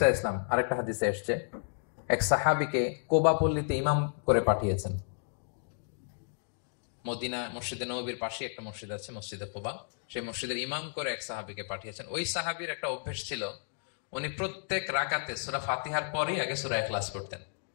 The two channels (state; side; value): silent; right; digital silence